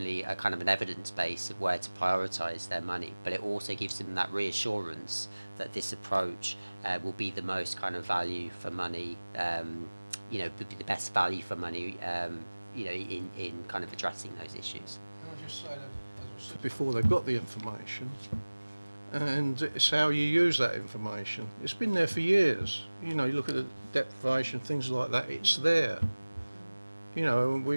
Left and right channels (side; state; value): both; inverted; correlation -1.00